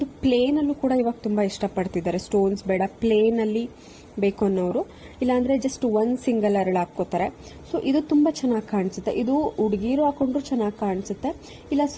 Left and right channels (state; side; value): identical; both; correlation 1.00